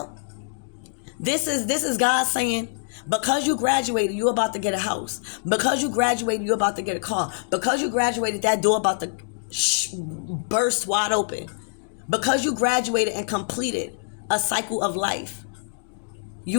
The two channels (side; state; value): right; silent; digital silence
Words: This is God saying, because you graduated, you're about to get a house. Because you graduated, you're about to get a car. Because you graduated, that door about to burst wide open. Because you graduated and completed a cycle of life,